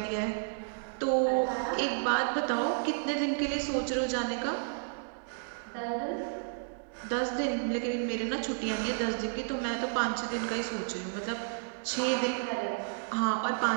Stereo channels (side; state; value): left; silent; digital silence